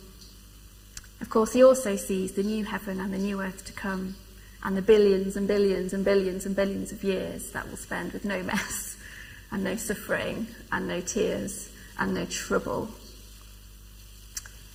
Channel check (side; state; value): both; identical; correlation 1.00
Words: Of course, he also sees the new heaven and the new earth to come, and the billions and billions and billions and billions of years that we'll spend with no mess and no suffering and no tears and no trouble.